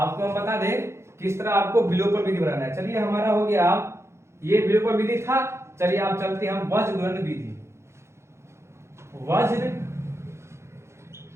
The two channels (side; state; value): left; late; 0.13 ms